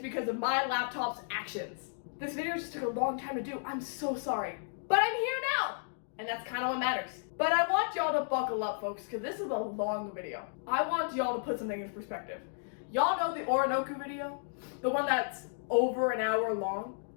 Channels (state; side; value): silent; right; digital silence